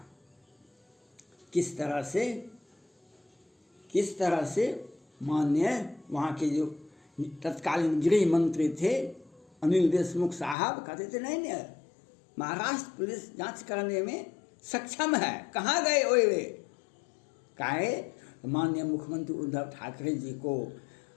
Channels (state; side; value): drops out; right; at 10.6 s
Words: किस तरह से माननीय वहाँ के जो तत्कालीन गृह मंत्री थे अनिल देशमुख साहब कहते थे नहीं, महाराष्ट्र पुलिस जांच करने में सक्षम है, कहाँ गए वे काहे। माननीय मुख्यमंत्री उद्धव ठाकरे जी को,